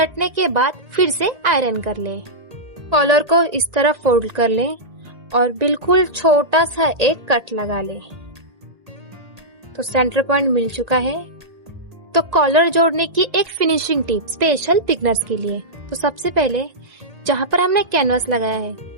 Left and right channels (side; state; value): left; late; 1.9 ms